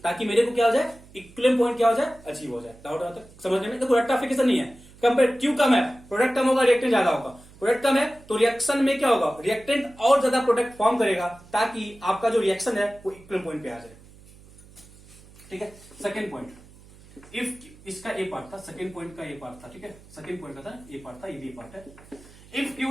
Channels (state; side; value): noise; right; hum, 23 dB below the sound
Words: ताकि मेरे को क्या हो जाए, इक्विलिब्रियम पॉइंट क्या हो जाए, अचीव हो जाए। डाउट आता है समझने में? देखो रेक्टिफिकेशन नहीं है, कंपेयर क्यू कम है, प्रोडक्ट कम होगा, रिएक्टेंट ज्यादा होगा, प्रोडक्ट कम है तो रिएक्शन में क्या होगा, रिएक्टेंट और ज्यादा प्रोडक्ट फॉर्म करेगा, ताकि आपका जो रिएक्शन है वो इक्विलिब्रियम पॉइंट पे आ जाए। ठीक है, सेकंड पॉइंट, इफ इसका ए पार्ट था, सेकंड पॉइंट का ए पार्ट था, ठीक है, सेकंड पॉइंट का था ए पार्ट था, ये बी पार्ट है। If